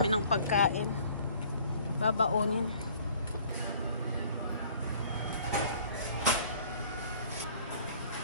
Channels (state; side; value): inverted; both; correlation -0.54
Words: ng pagkain. Babaonin.